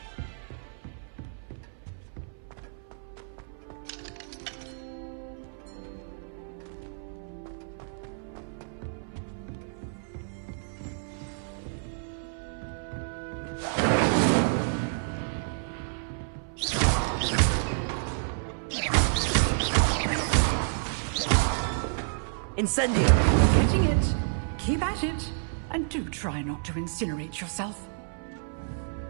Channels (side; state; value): left; silent; 58 dB below the other